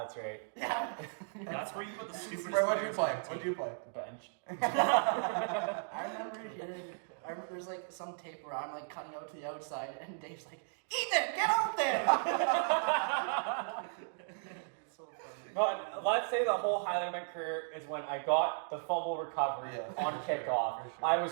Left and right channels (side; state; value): left; silent; digital silence